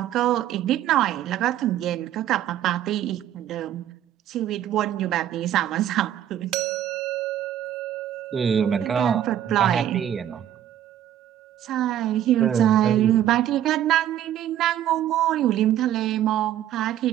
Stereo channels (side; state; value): left; quieter; 11.3 dB